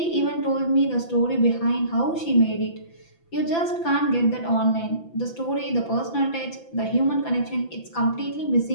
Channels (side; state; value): right; late; 6.0 ms